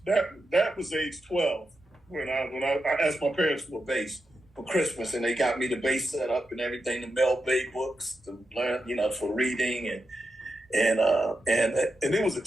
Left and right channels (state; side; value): normal; both; correlation 0.87